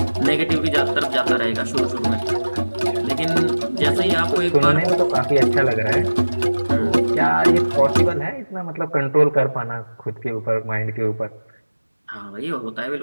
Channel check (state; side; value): inverted; both; correlation -1.00